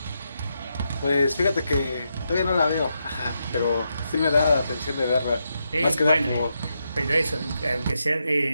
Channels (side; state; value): both; inverted; correlation -0.83